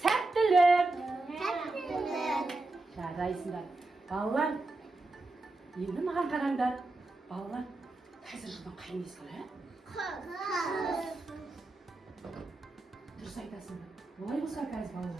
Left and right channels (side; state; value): left; quieter; 3.1 dB